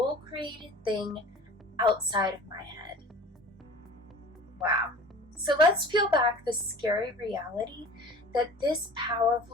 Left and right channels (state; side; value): normal; both; correlation 0.42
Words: created thing outside of my head." Wow. So let's peel back the scary reality that this